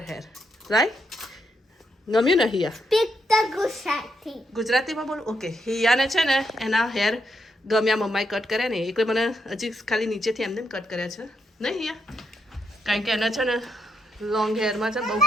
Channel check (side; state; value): both; normal; correlation 0.79